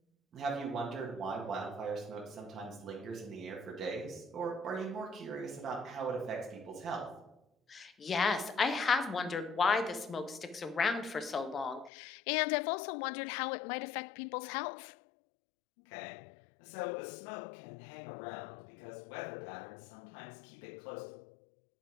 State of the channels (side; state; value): right; drops out; at 11.9 s